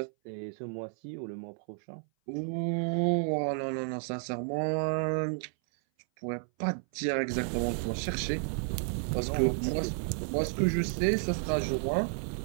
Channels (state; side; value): silent; left; 57 dB below the other